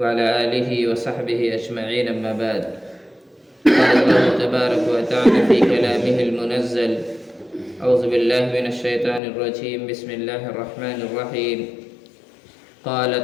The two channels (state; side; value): drops out; right; at 9.2 s